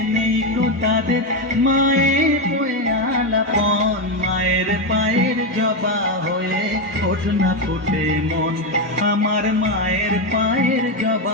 নেই তো তাদের মায়ের বয়ে আলাপন মায়ের পায়ের জবা হয়ে ওঠ না ফুটে মন আমার মায়ের পায়ের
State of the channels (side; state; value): both; normal; correlation 0.08